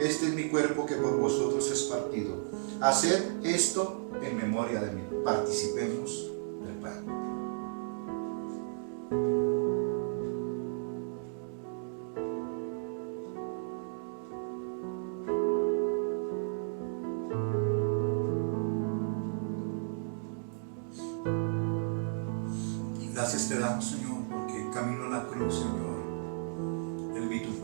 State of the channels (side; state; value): left; silent; digital silence